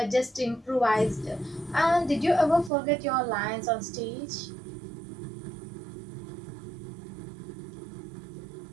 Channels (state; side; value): drops out; left; at 2.7 s